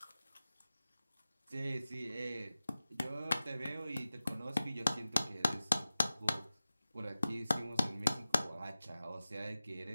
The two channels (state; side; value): inverted; both; correlation -0.96